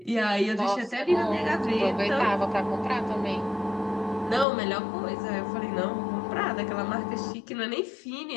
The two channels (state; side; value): drops out; right; at 4.5 s